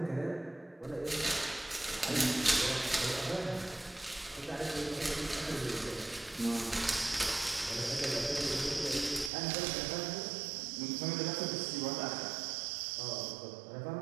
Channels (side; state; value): left; drops out; at 9.3 s